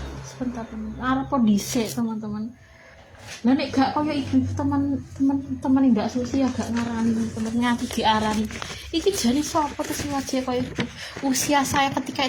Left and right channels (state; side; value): identical; both; correlation 1.00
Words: Sebentar teman, arep dhisik teman-teman. Lah nek gak koyo ibu teman-teman ndak susi ya gak ngarani teman nganti diarani. Iki jane sapa terus wajah koyo ibu. Usia saya ketika